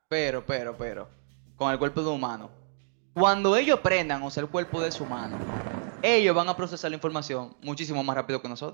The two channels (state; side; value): silent; left; digital silence